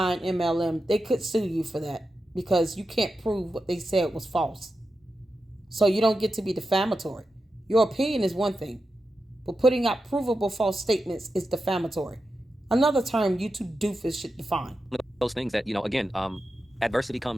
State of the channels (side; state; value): both; normal; correlation 0.90